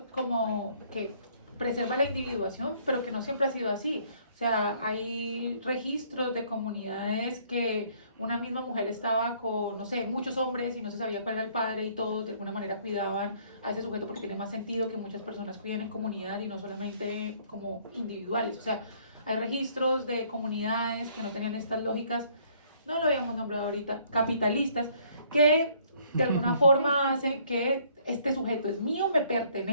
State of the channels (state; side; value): inverted; both; correlation -0.62